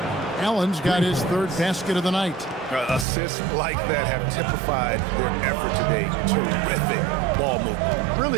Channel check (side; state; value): left; drops out; at 3.1 s